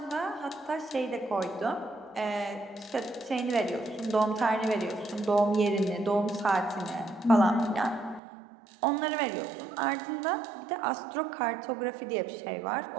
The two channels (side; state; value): left; drops out; at 8.2 s